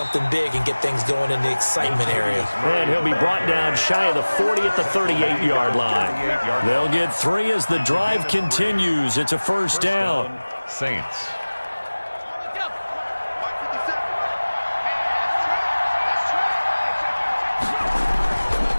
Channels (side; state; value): both; inverted; correlation -1.00